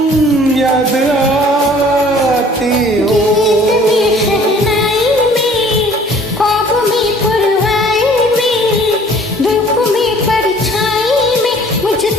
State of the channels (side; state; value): both; normal; correlation 0.53